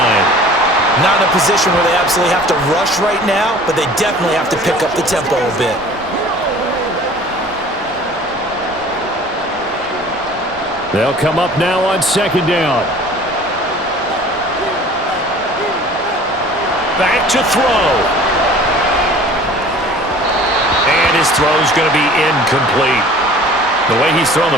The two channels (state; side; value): normal; both; correlation 0.47